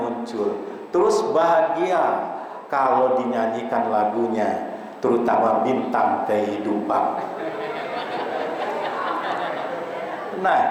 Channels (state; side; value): identical; both; correlation 1.00